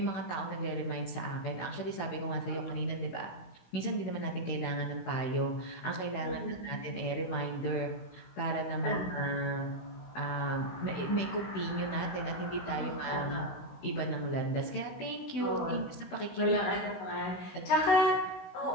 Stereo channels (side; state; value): right; late; 16 ms